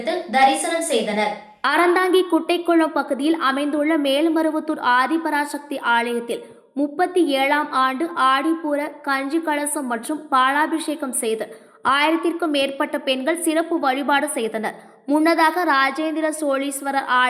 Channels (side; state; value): both; identical; correlation 1.00